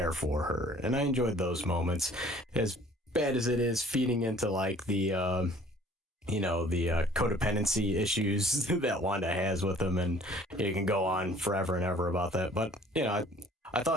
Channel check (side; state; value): both; normal; correlation 0.53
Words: for her. And I enjoyed those moments. As bad as it is feeding into like the, the codependency issues that Wanda has with him, and you can go on forever and ever about that. But, I